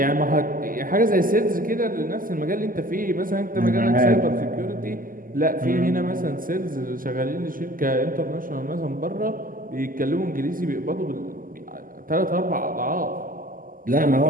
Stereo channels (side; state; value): left; late; 0.41 ms